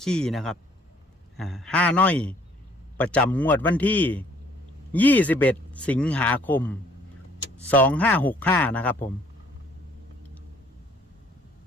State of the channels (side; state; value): both; normal; correlation 0.61